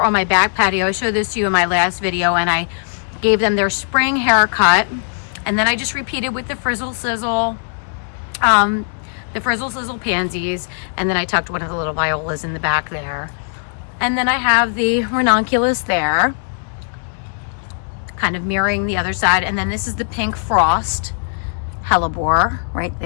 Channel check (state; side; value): silent; right; 67 dB below the other